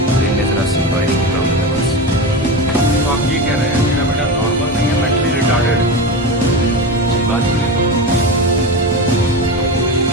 ब्रेन में जरा सी वायरिंग की प्रॉब्लम है बस। तो आप ये कह रहे हैं मेरा बेटा नॉर्मल नहीं है, मेंटली रिटार्डेड है? सही बात है।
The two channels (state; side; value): normal; both; correlation 0.22